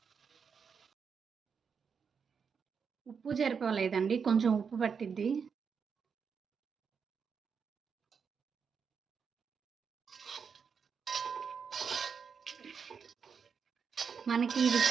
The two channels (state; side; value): quieter; left; 6.2 dB